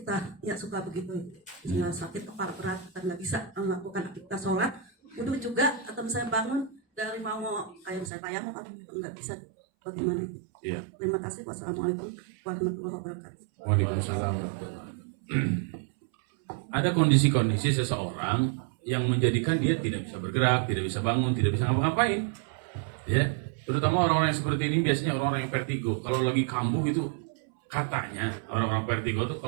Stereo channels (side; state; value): left; drops out; at 8.1 s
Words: kita ya suka begitu, misalnya sakit kepala berat kita nggak bisa melakukan aktivitas sholat, wudhu juga, atau misalnya bangun dari mau kayak misalnya tayamum itu nggak bisa, bagaimana itu? Iya. Terima kasih. Wassalamualaikum warahmatullahi wabarakatuh. Waalaikumsalam warahmatullahi wabarakatuh. Ada kondisi-kondisi seseorang yang menjadikan dia tidak bisa bergerak, tidak bisa bangun, tidak bisa ngapa-ngapain. Ya, terutama orang-orang yang seperti ini biasanya orang-orang yang vertigo. Kalau lagi kambuh itu katanya orang-orang vertigo itu